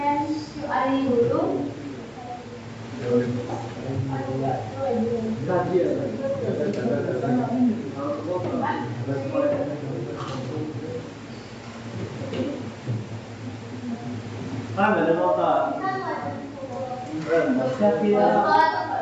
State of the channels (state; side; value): identical; both; correlation 1.00